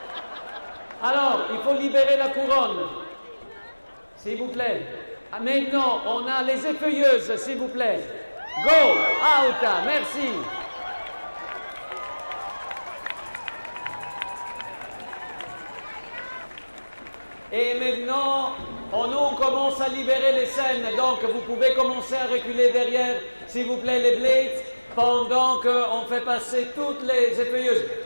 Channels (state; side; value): inverted; both; correlation -1.00